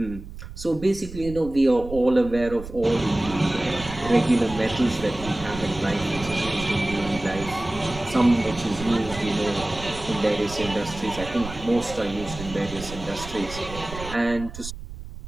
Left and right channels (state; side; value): noise; right; rumble, 12 dB below the sound